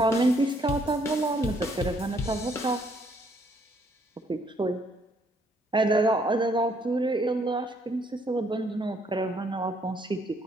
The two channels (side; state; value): both; normal; correlation 0.68